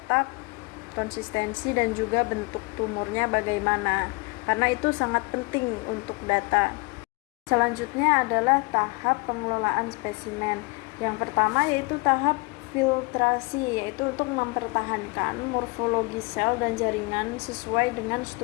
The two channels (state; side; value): quieter; right; 28.1 dB